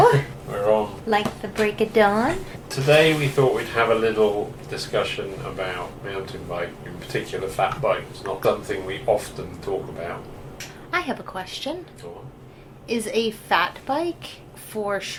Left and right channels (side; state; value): both; identical; correlation 1.00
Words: We're on. Like the break of dawn? Today we thought we'd have a little discussion about mountain bike, in particular fat bikes. Not something we often talk about. I have a question. Go on. Is a fat bike for